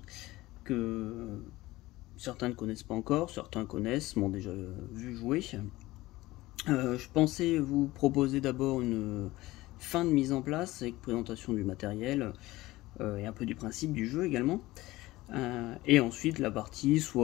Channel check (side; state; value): right; quieter; 18.4 dB